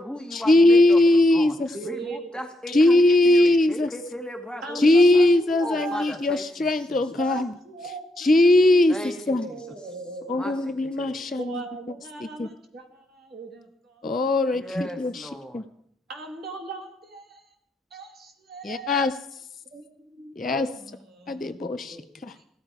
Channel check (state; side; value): normal; both; correlation 0.79